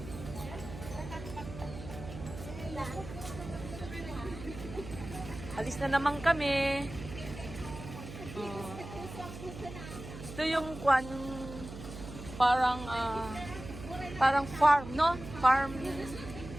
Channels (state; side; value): noise; right; hum, 12 dB below the sound